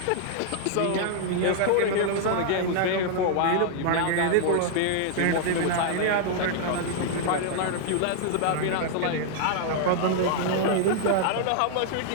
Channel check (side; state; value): both; different; correlation -0.01